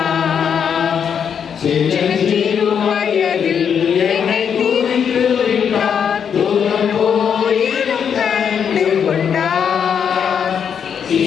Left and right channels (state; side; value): quieter; right; 7.6 dB